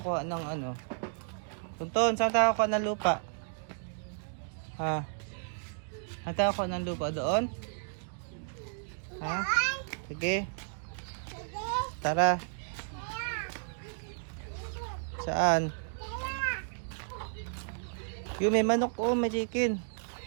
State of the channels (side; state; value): left; silent; digital silence